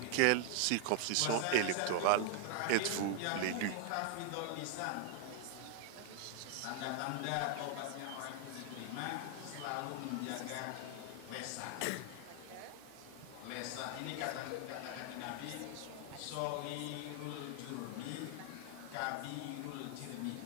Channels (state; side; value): different; both; correlation 0.00